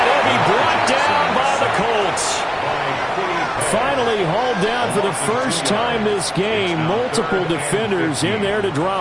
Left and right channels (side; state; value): both; identical; correlation 1.00